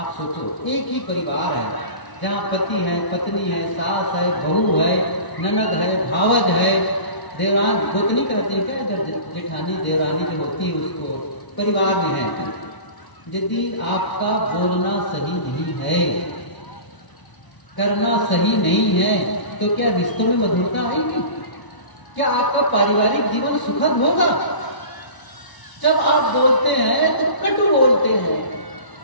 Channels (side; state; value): right; late; 1.0 ms